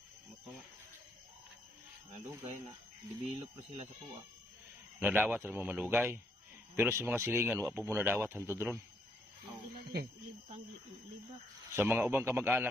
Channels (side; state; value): both; normal; correlation 0.74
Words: Mutunga. Nadugay na develop po sila sa kuha. Nadawat ra mo malugay. Pero sa mga silingan wa po mo nadawat hantod ron. libang libak. Sa mga ubang